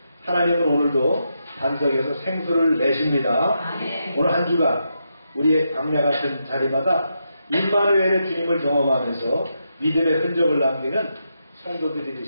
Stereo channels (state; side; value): inverted; both; correlation -0.83